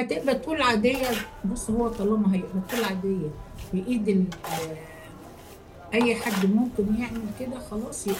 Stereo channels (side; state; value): both; identical; correlation 1.00